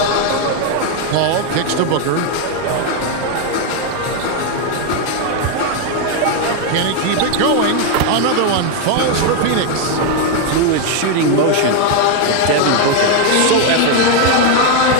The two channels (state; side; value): different; both; correlation 0.01